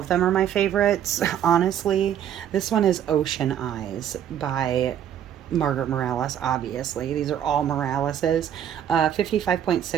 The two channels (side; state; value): left; quieter; 9.9 dB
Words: them are my favorites, honestly. This one is Ocean Eyes by Margaret Morales, obviously. These are all Moraleses.